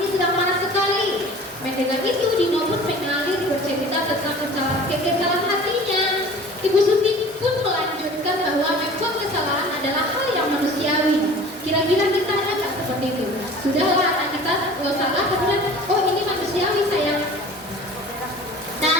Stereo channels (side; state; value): both; normal; correlation 0.43